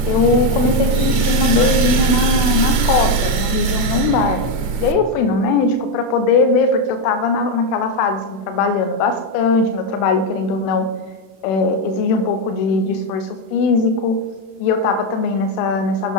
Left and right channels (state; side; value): late; right; 32 ms